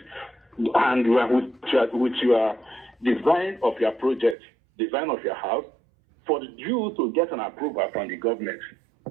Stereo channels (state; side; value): drops out; left; at 4.4 s